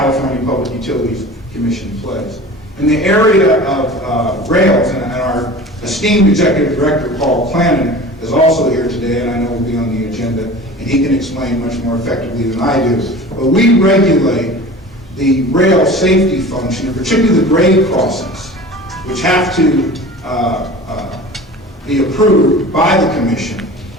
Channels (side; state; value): both; normal; correlation 0.38